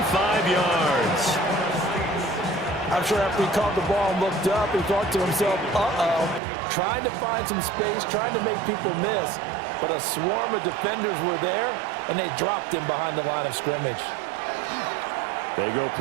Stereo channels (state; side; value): drops out; left; at 6.4 s